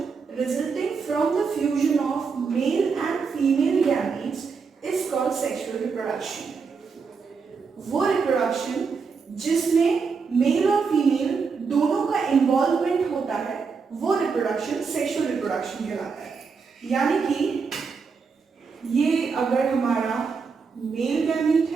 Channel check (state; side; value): quieter; left; 5.3 dB